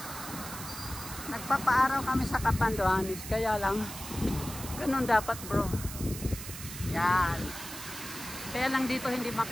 Nagpapaaraw kami sa Catanduanes, kaya lang ganun dapat bro. Yan. Kaya lang dito hindi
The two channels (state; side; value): noise; right; hiss, 10 dB below the sound